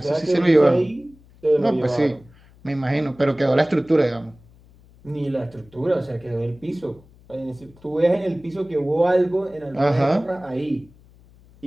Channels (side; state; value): left; noise; hum, 27 dB below the sound